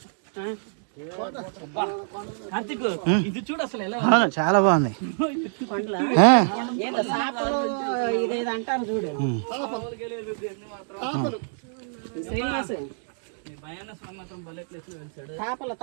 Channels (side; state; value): left; silent; digital silence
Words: ఇది చూడు అసలు ఎలా చాలా బాగుంది. ఇదేదో అంటారు చూడు శ్రీనివాస్. తాపలు